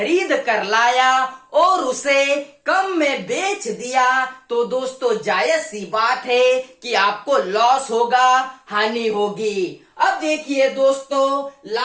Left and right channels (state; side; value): identical; both; correlation 1.00